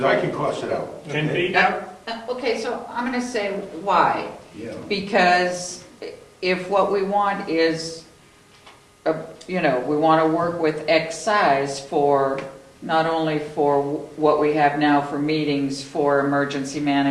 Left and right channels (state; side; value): identical; both; correlation 1.00